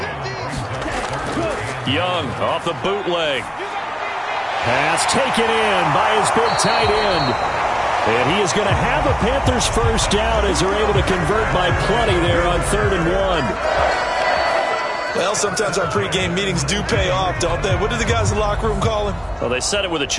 Young off the bootleg. Pass taken in by his big tight end. And he is going to have a Panthers first down as they're able to convert by plenty there on 3rd and 1. Well, sometimes our pregame meetings do pay off, don't they? What did the guys in the locker room call him? Well, they said it with a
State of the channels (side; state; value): both; identical; correlation 1.00